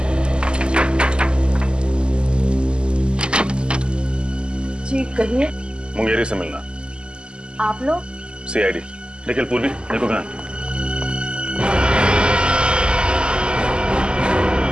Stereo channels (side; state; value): left; late; 0.049 ms